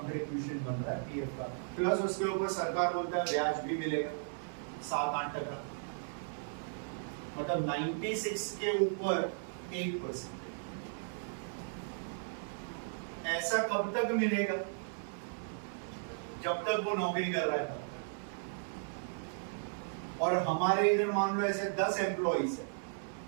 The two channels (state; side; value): silent; left; digital silence